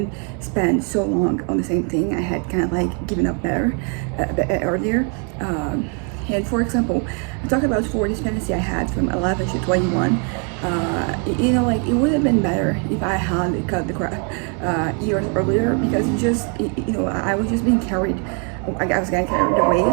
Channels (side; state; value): left; quieter; 39.0 dB